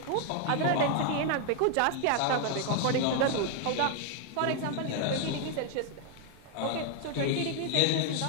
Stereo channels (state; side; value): different; both; correlation 0.00